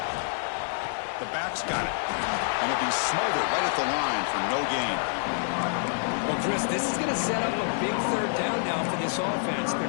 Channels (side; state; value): right; silent; 59 dB below the other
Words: The back's got it. And it'll be smothered right at the line for no gain. Well, Chris, this is going to set up a big third down now for this offense.